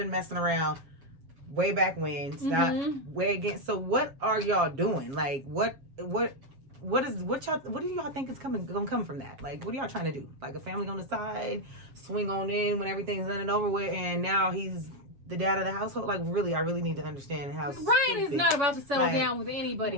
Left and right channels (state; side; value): late; left; 7.3 ms